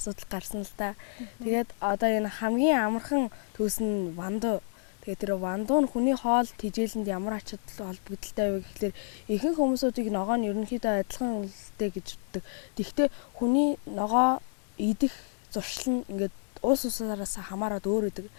гарсан л та. Тэгээд одоо энэ хамгийн амархан түүс нь вандой. Тэгээд тэр вандуу нь хүний хоол тэжээлэнд ямар ач холбогдолтой вэ гэхэлэр ихэнх хүмүүсүүдийг ногоо нь ерөнхийдөө адилхан үлдээ гэж үздэг. Тэгэхдээ хүний ногоо идэх зуршил нь ингээд уус усаараас хамаарат өөр идэг.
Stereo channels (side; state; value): right; silent; digital silence